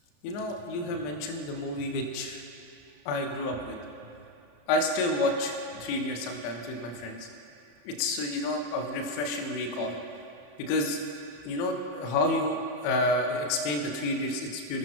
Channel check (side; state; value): right; late; 34 ms